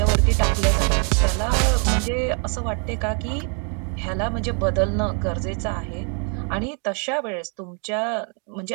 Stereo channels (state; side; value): quieter; left; 39.7 dB